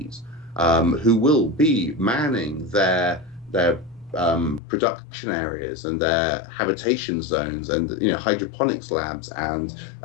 who will be manning their production areas and their habitation zones and hydroponics labs, and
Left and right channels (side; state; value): right; drops out; at 4.6 s